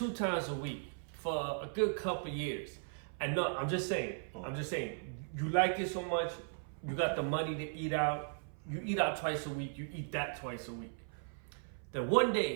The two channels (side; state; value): left; silent; 53 dB below the other